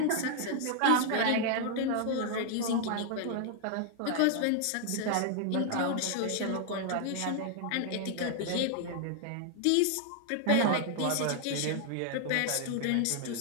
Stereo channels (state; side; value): different; both; correlation 0.00